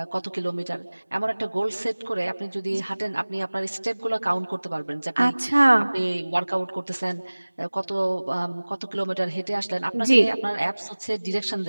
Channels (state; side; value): inverted; both; correlation -1.00